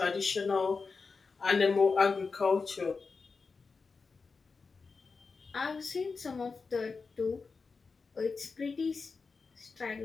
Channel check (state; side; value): quieter; right; 4.6 dB